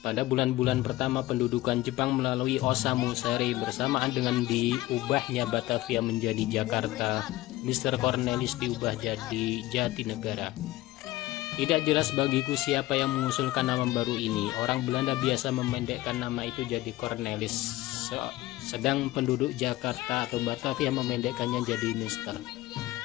Pada bulan-bulan pertama pendudukan Jepang melalui Osamu Seri bersamaan dengan diubahnya Batavia menjadi Jakarta, Mr. Cornelis diubah jadi Jatinegara. Tidak jelas bagiku siapa yang mengusulkan nama baru ini. Orang Belanda biasa memendekkan nama itu jadi Cornelis, sedang penduduk Jakarta atau Batavia memendekkannya jadi Mister.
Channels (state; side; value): quieter; right; 17.4 dB